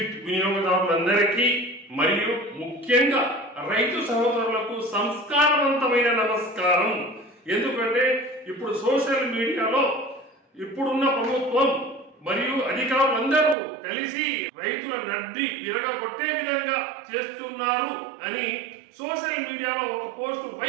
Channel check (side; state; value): left; drops out; at 13.6 s